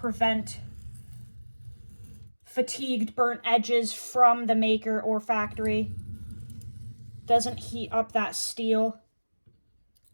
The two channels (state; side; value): inverted; both; correlation -1.00